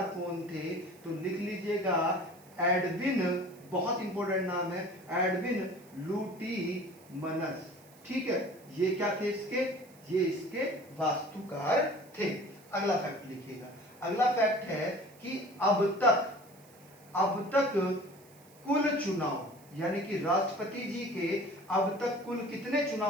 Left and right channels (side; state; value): right; noise; hiss, 26 dB below the sound